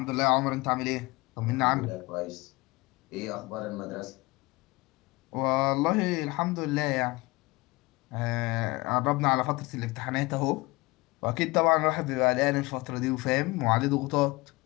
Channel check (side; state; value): right; quieter; 23.0 dB